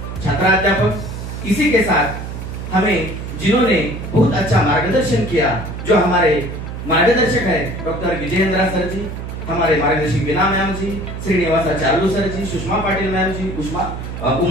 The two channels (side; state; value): right; noise; hum, 8 dB below the sound